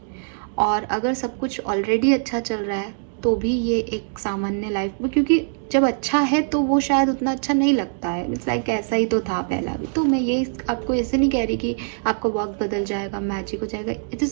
और अगर सब कुछ ऑलरेडी अच्छा चल रहा है तो भी ये एक सामान्य लाइफ में, क्योंकि जब अच्छा है तो वो शायद उतना अच्छा नहीं लगता है, इट्स लाइक ऐसा ही तो था पहला भी। तो मैं ये आपको ऐसे नहीं कह रही कि आपका वक्त बदल जाएगा, मैजिक हो जाएगा, it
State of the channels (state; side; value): silent; left; digital silence